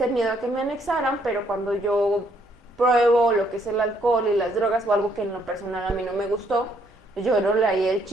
miedo a que me anexaran, pero cuando yo pruebo lo que es el alcohol y las drogas o algo que en lo personal a mí no me gustó, yo no le haría el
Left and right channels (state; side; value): normal; both; correlation 0.69